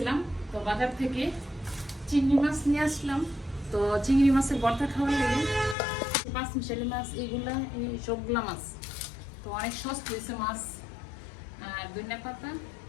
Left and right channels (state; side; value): drops out; right; at 5.8 s